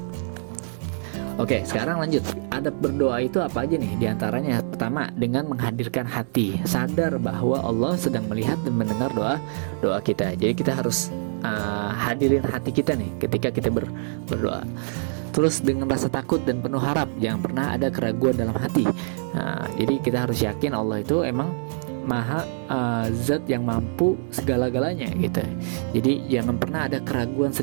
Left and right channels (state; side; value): silent; left; 58 dB below the other